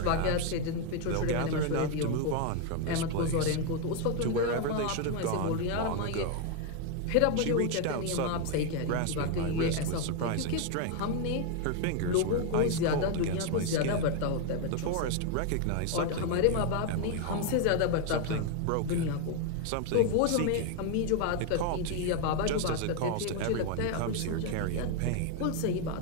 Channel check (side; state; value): both; different; correlation 0.01